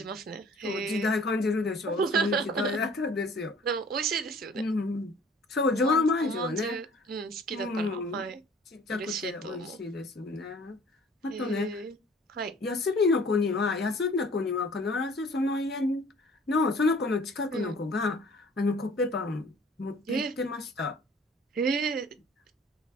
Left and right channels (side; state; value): both; normal; correlation 0.51